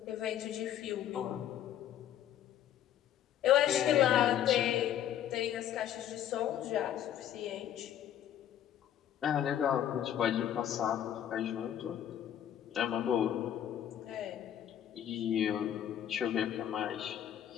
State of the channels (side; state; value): right; quieter; 10.6 dB